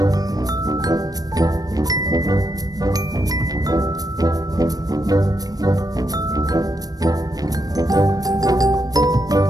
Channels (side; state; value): left; late; 0.18 ms